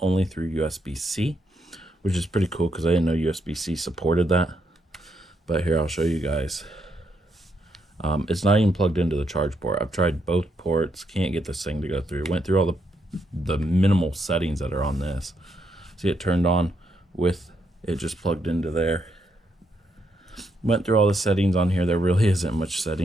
through USB-C, which is pretty cool because I didn't know USB-C supported that. But here, I'll show you guys. It's not even plugged into the charge port. I've tried both ports, can't get this thing to go through. Went through all the minimal settings that are on this. See it turned on with it just plugged into there. Went through all the settings on here. There really isn't much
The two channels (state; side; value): normal; both; correlation 0.78